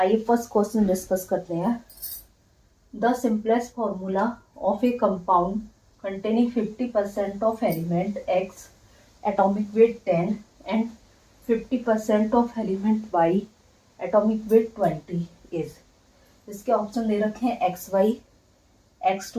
फर्स्ट क्वेश्चन डिस्कस करते हैं। The simplest formula of a compound containing 50% of element X, atomic weight 10 and 50% of element Y, atomic weight 20 is। इसके ऑप्शन दे रखे हैं X Y, X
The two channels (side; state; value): both; identical; correlation 1.00